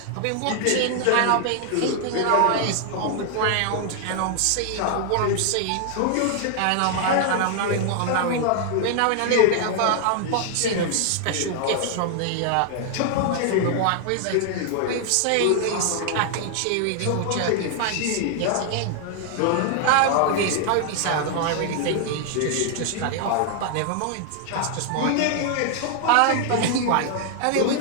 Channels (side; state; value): both; different; correlation 0.00